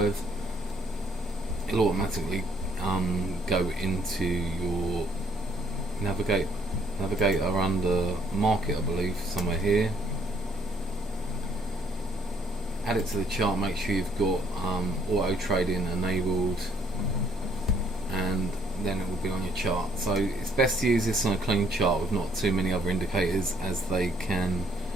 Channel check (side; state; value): both; normal; correlation 0.66